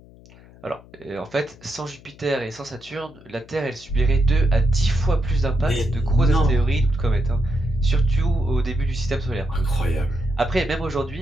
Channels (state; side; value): noise; left; hum, 23 dB below the sound